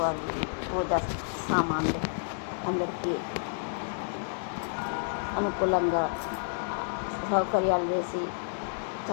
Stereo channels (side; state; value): right; silent; digital silence